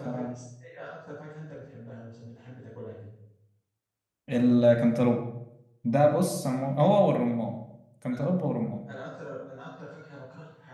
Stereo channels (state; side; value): identical; both; correlation 1.00